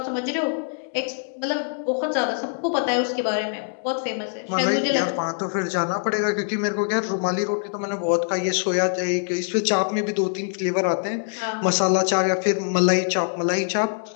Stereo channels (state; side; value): silent; right; digital silence